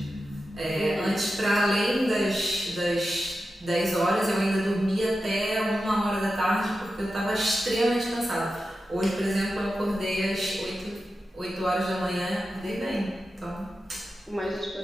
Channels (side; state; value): both; normal; correlation 0.91